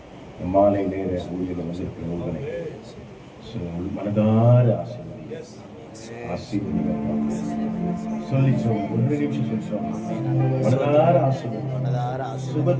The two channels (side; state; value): both; identical; correlation 1.00